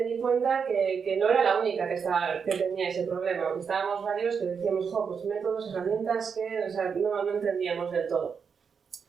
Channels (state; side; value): quieter; left; 6.3 dB